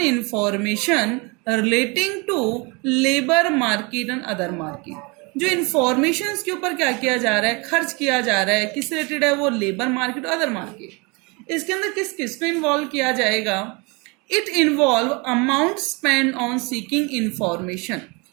information relating to labour market and other market. जो इंफॉर्मेशन के ऊपर क्या किया जा रहा है, खर्च किया जा रहा है, किस रिलेटेड है वो, लेबर मार्केट और अदर मार्केट। इसके अंदर किस किस को इन्वॉल्व किया जाएगा, it involve amount spend on seeking information.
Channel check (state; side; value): quieter; left; 28.8 dB